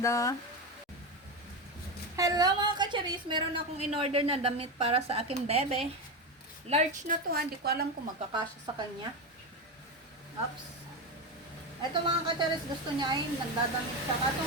Hello mga kacharis. Meron akong in-order na damit para sa aking bebe. Large na to. Hindi ko alam kung magkakasya sa kanya. Oops. Ito mga kacharis, gusto niya ay nagdadamit siya. Ito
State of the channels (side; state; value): both; normal; correlation 0.15